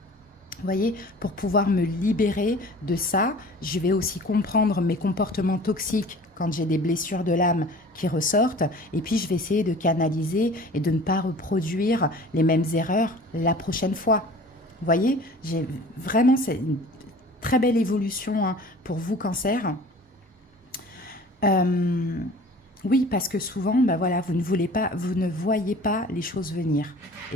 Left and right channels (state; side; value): normal; both; correlation 0.45